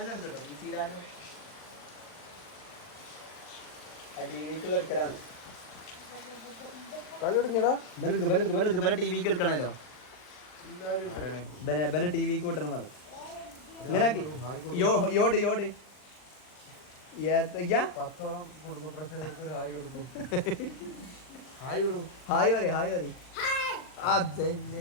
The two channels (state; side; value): late; right; 39 ms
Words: ടിവിക്ക് എടുക്കണല്ലോ. ടിവിക്ക് വിട്ടണം പറ. ഇങ്ങനെ യോട് യോട് ഹായ് പറ ഹായ് പറ.